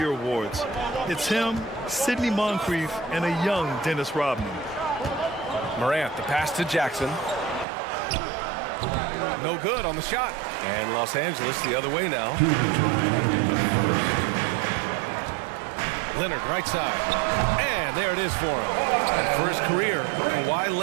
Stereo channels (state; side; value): drops out; left; at 7.7 s